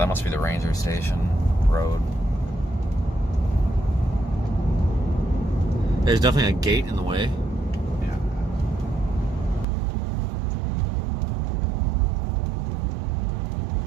must be the ranger station road. There's definitely a gate in the way. Yeah.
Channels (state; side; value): drops out; left; at 9.7 s